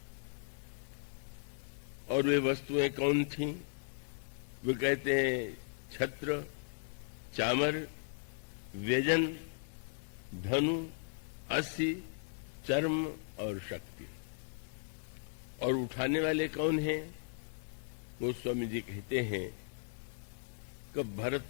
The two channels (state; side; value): silent; right; digital silence